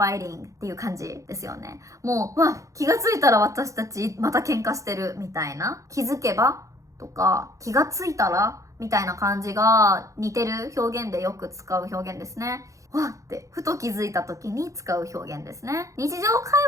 っていう感じですよね。もう、気がついたら私たちまた喧嘩してるみたいな。気づけばとか気がついたらみたいな感じが似てる表現でよく使う表現ですね。わってふと気づいた時に使う表現ですね。日常会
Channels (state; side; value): late; left; 0.15 ms